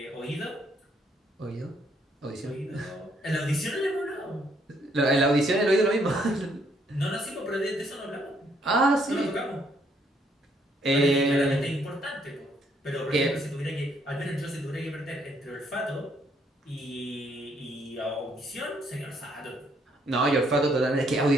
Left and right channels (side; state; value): both; normal; correlation 0.69